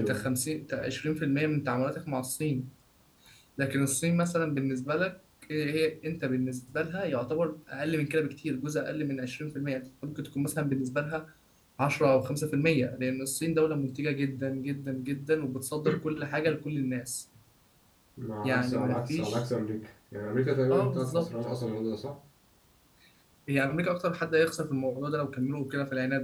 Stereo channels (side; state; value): both; identical; correlation 1.00